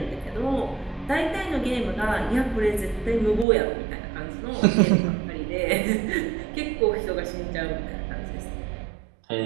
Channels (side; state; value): left; drops out; at 3.5 s